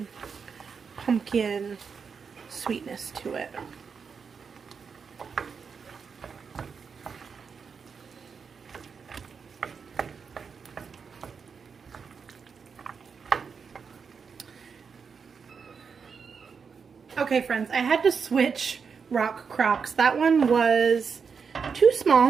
pumpkin sweetness to it. Okay, friends, I had to switch rock crocks. That one was too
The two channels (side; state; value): left; quieter; 5.9 dB